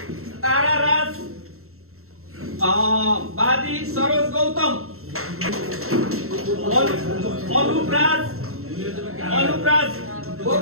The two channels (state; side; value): late; left; 0.63 ms